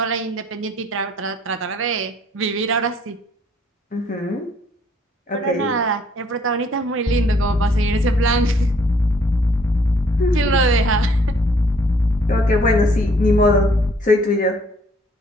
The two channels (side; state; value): both; normal; correlation 0.63